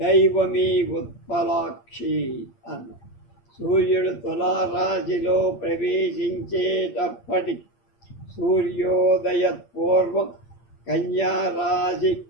ఉత్పలాక్షి అన్న. సూర్యుడు తులారాశిలో ప్రవేశించేటప్పటి సూర్యోదయ పూర్వం కన్యారాశి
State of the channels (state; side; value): late; right; 8.6 ms